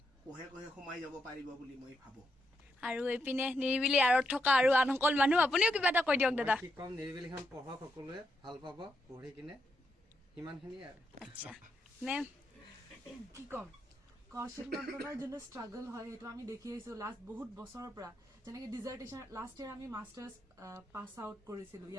কোহে কোহে সোমাই যাব পাৰিব বুলি মই ভাবো আৰু এইপিনে নিৰিবিলি আঁৰত থকা আৰু আন সকল মানুহ আপুনিও কিবা এটা কৈ দিয়ক দাদা কি কম নিৰিবিলিখন পঢ়ক সকলোৱে ভাল পাব পঢ়ি কিনে সিমানখিনি আৰু আচ্ছা মেম কি ক'ম কৌশিক নন্দনৰ যোনটো ষ্ট্ৰাগল হয় সেইটো আমি দেখি আহিছোঁ লাষ্ট বহুত বছৰৰ পৰা যেনেকৈ ডিজাৰ্টেশ্যন লাষ্ট ইয়েৰ আমি মাষ্টাৰ্ছ পাছ আউট কৰিছিলোঁ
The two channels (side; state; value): both; normal; correlation 0.82